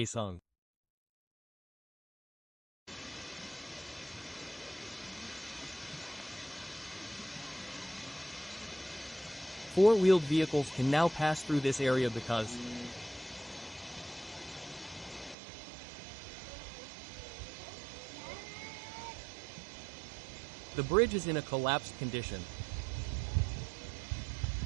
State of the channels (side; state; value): left; drops out; at 15.4 s